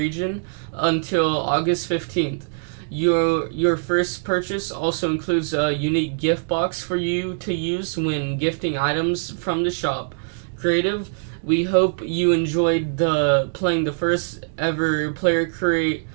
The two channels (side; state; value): left; silent; digital silence